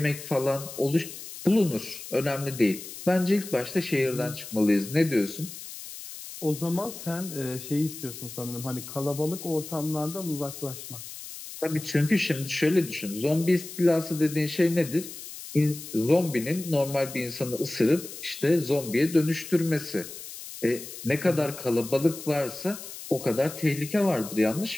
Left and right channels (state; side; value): noise; left; hiss, 12 dB below the sound